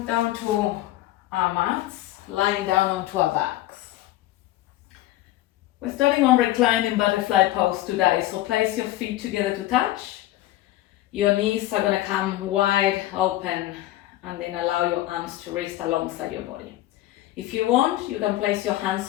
down to our mats, lying down onto our backs. We're starting on reclining butterfly pose today, so place your feet together to touch. Your knees are gonna come wide open and then allow your arms to rest alongside your body. If you want, you can place your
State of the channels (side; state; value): right; quieter; 15.3 dB